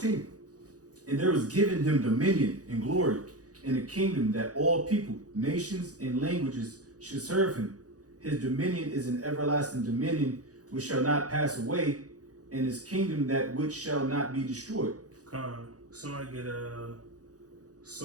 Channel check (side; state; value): left; late; 0.67 ms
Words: And there was given him dominion and glory and a kingdom that all people, nations, and languages should serve him. His dominion is an everlasting dominion which shall not pass away, and his kingdom that which shall not be destroyed. Somebody get